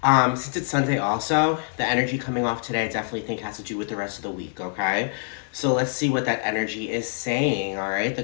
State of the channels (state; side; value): silent; right; 60 dB below the other